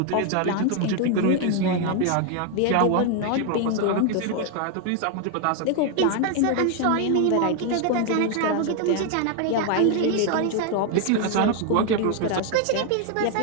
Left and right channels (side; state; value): both; different; correlation 0.01